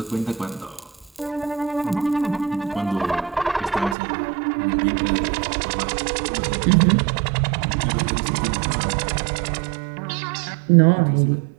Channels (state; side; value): drops out; left; at 4.0 s